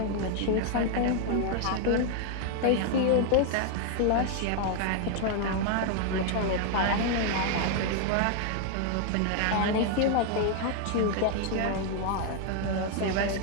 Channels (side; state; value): both; different; correlation 0.00